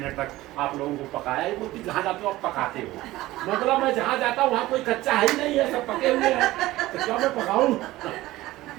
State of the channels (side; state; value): left; quieter; 17.3 dB